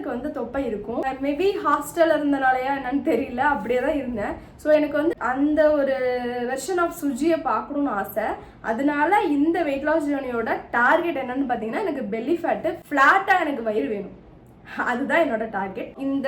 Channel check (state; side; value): identical; both; correlation 1.00